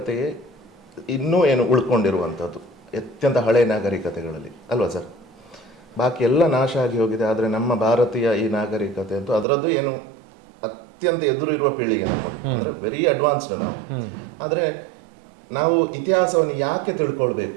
ಇನ್ನೂ ಏನು ಉಳ್ಕೊಂಡಿರುವಂಥದ್ದು ಅತ್ಯಂತ ಹಳೆಯ ನಾಗರಿಕತೆಗಳಲ್ಲಿ ಅಲ್ವಾ ಸರ್? ಬಾಕಿ ಎಲ್ಲ ನಾಶ ಆಗಿ ಹೋಗಿದೆ. ಆದರೆ ನಮ್ಮ ಭಾರತೀಯ ಈ ನಾಗರಿಕತೆ ಅಂತೂ ಅದರದ್ದು ಏನು ಅತ್ಯಂತ ಎದುರು ಇರುವ ಪೀಳಿಗೆ ನಮ್ಮದು, ಅಂದರೆ ವೆರಿ ಅಡ್ವಾನ್ಸ್ಡ್ ನಾವು. ಆದರೆ ನಾವು ಇತಿಹಾಸವನ್ನು ಯಾಕೆ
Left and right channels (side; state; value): left; drops out; at 9.5 s